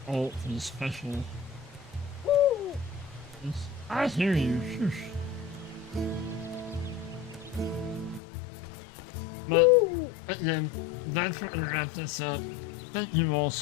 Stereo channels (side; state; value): right; drops out; at 8.2 s